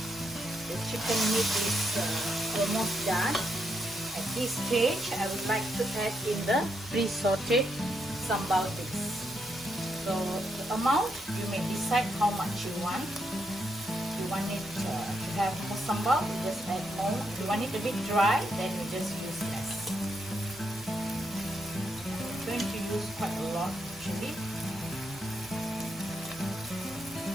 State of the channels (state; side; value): normal; both; correlation 0.79